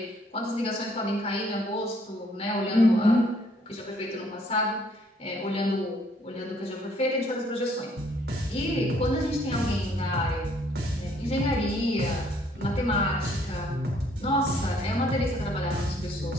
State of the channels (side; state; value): both; normal; correlation 0.64